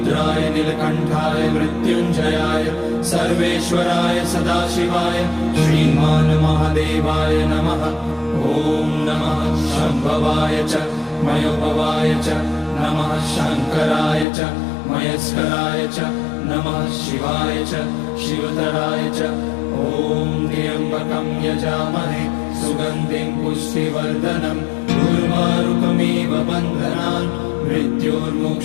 नीलकण्ठाय मृत्युञ्जयाय सर्वेश्वराय सदाशिवाय श्रीमान् महादेवाय नमः। ॐ नमः शम्भवाय च मयोभवाय च नमः शङ्कराय च मयस्कराय च नमः शिवाय च शिवतराय च। ॐ त्र्यम्बकं यजामहे सुगन्धिं पुष्टिवर्धनम् उर्वारुकमिव बन्धनान्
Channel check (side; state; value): right; drops out; at 14.2 s